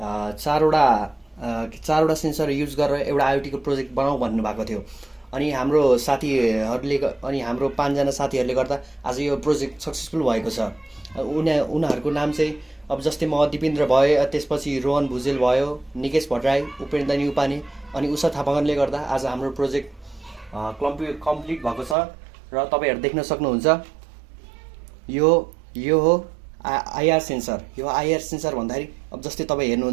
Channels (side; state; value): left; drops out; at 22.0 s